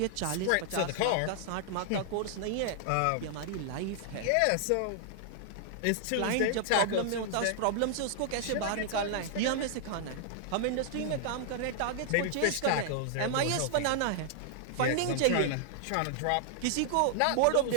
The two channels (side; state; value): both; different; correlation -0.01